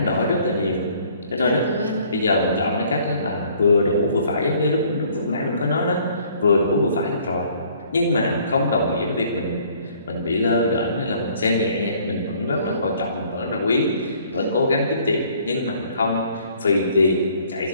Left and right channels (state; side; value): inverted; both; correlation -0.59